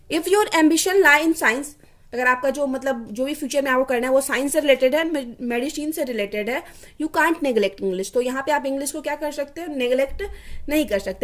If your ambition lie in science, अगर आपका जो मतलब जो भी फ्यूचर में आपको करना है वो साइंस से रिलेटेड है, मेडिसिन से रिलेटेड है, यू कांट नेग्लेक्ट इंग्लिश, तो यहाँ पे आप इंग्लिश को क्या कर सकते हो, नेग्लेक्ट नहीं कर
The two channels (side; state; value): both; identical; correlation 1.00